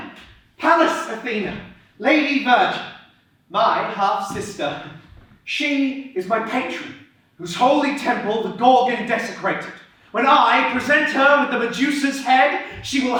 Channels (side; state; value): both; identical; correlation 1.00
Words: Pallas Athena, Lady Virgin, my half-sister. She is my patron, whose holy temple the Gorgon desecrated. When I present her with the Medusa's head, she will